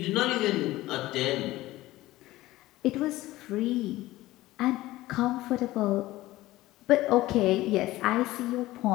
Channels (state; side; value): quieter; right; 17.2 dB